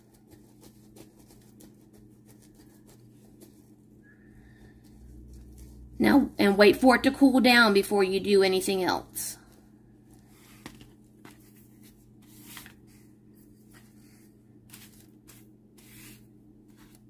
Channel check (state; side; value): identical; both; correlation 1.00